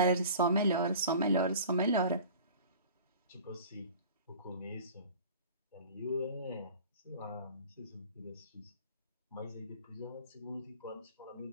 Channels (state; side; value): inverted; both; correlation -0.42